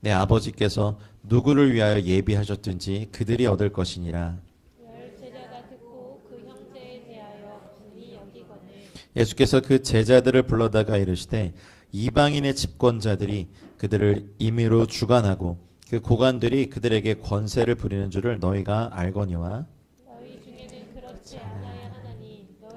아버지께서 누구를 위하여 예비하셨든지 그들이 얻을 것이니라. 예수께서 그 제자들을 불러다가 이르시되 이방인의 집권자들이 그들을 임의로 주관하고 그 고관들이 그들에게 권세를 부리는 줄을 너희가 알거니와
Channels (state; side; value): identical; both; correlation 1.00